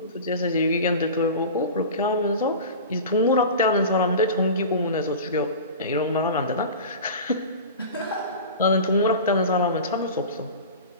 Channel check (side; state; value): both; inverted; correlation -0.33